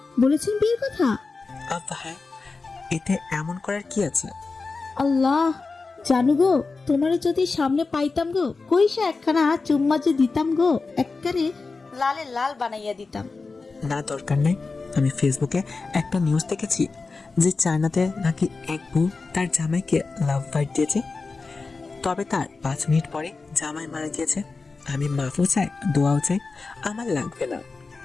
বলেছেন বিয়ের কথা? হ্যাঁ, এতে এমন করার কি আছে? আল্লাহ জানু গো, তোমারে যদি সামনে পাইতাম গো, কইসা একখানা চুম্মা যে দিতাম গো, একবারে লালে লাল বানাইয়া দিতাম। না, দরকার নেই। আমি ফেসবুকে একটা নিউজ দেখেছি যে চায়নাতে নাকি এক বউ তার জামাইকে লাভ বাইট দিয়েছে, তবে তার 5 মিনিট পরে জামাই মারা গিয়েছে। আমি মাফও চাই, দোয়াও চাই, আমার লাগবে না।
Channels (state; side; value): quieter; right; 4.1 dB